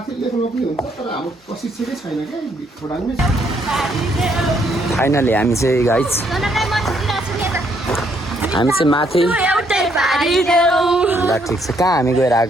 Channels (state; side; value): normal; both; correlation 0.71